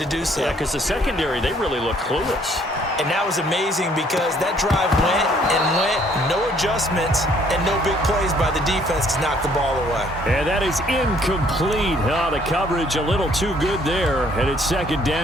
do so. Yeah, because the secondary, they really look clueless. And that was amazing because that drive went and went, no adjustments, and no big plays by the defense to knock the ball away. And that is incomplete. Oh, the coverage a little too good there, and it's second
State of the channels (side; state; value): both; normal; correlation 0.63